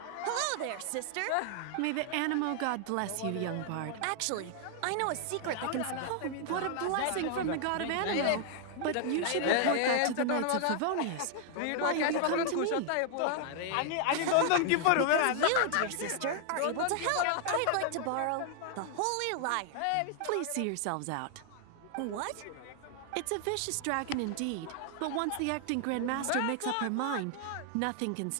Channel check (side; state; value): both; different; correlation 0.00